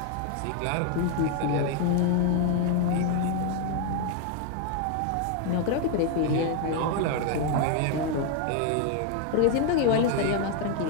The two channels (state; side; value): different; both; correlation 0.00